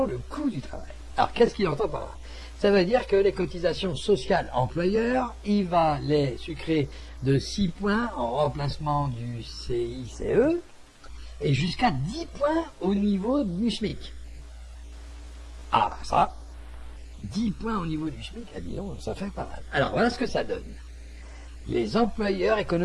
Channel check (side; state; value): both; identical; correlation 1.00